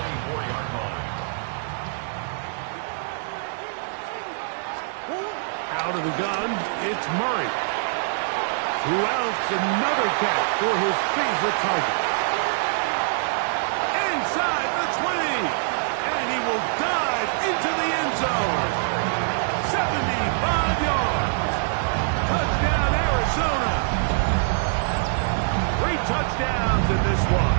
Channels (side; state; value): left; silent; digital silence